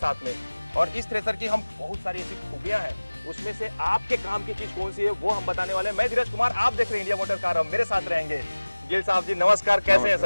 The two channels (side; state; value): both; inverted; correlation -1.00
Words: में। और इस थ्रेसर की हम बहुत सारी ऐसी खूबियां हैं, उसमें से आपके काम की चीज कौन सी है वो हम बताने वाले हैं। मैं धीरज कुमार, आप देख रहे हैं इंडिया मोटर कार, अब मेरे साथ रहेंगे गिल साहब जी। नमस्कार, कैसे हैं